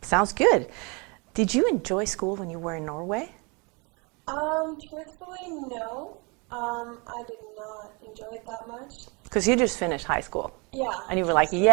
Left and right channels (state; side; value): quieter; left; 30.5 dB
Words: Sounds good. Did you enjoy school when you were in Norway? Truthfully, no. I did not enjoy it that much. Because you just finished high school. Yeah. And you were like,